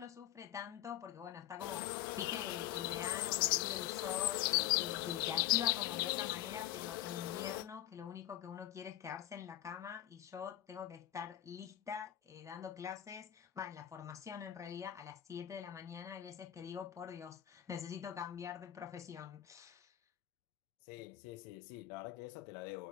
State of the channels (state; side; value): quieter; right; 13.4 dB